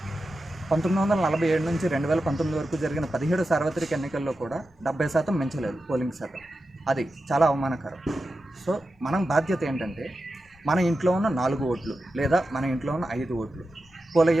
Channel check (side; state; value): both; normal; correlation 0.91